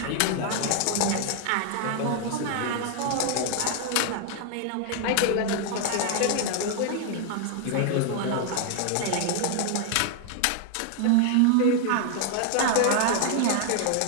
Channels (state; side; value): different; both; correlation 0.00